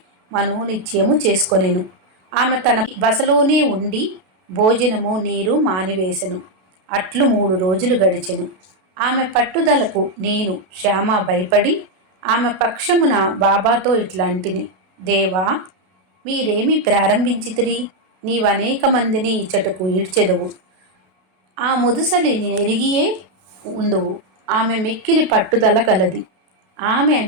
మనోనిశ్చయము చేసుకొనెను। ఆమె తన బసలోనే ఉండి భోజనము నీరు మానివేశెను। అట్లు 3 రోజులు గడిచెను। ఆమె పట్టుదలకు నేను శ్యామ భయపడి ఆమె పక్షమున బాబాతో ఇట్లాంటిని, దేవా, మీరేమి ప్రారంభించితిరి? నీవనేక మందిని ఇచ్చటకు ఈడ్చెదవు, ఆ ముదుసలిని నెరిగియే ఉందువు। ఆమె మిక్కిలి పట్టుదల కలది, ఆమె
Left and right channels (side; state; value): left; late; 32 ms